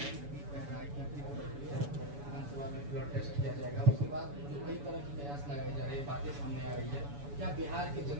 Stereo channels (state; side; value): late; left; 7.0 ms